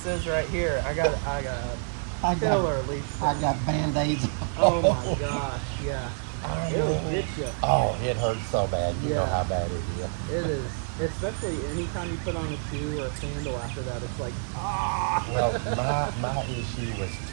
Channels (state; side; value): silent; left; 60 dB below the other